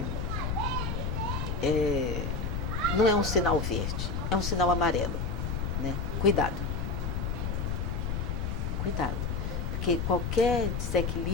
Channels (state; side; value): noise; left; rumble, 1 dB below the sound